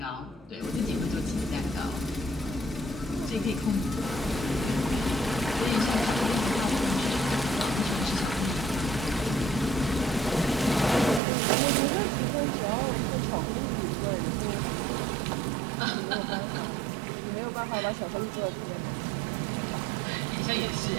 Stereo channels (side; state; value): left; drops out; at 11.2 s